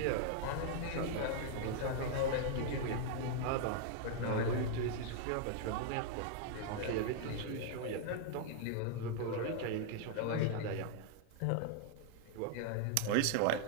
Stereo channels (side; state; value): both; different; correlation 0.00